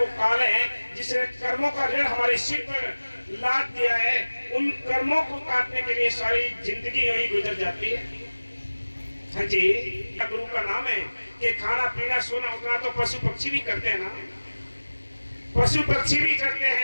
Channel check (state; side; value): inverted; both; correlation -1.00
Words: काल है, जिसने कर्मों का ऋण हमारे सिर पर लाद दिया है। उन कर्मों को काटने के लिए सारी जिंदगी यही गुजर जाती है। हाँ जी, गुरु का नाम है कि खाना पीना सोना उठना तो पशु पक्षी भी करते हैं ना, पशु पक्षी भी करते